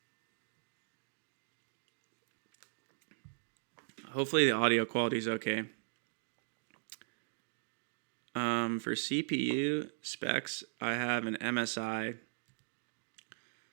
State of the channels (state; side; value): silent; left; digital silence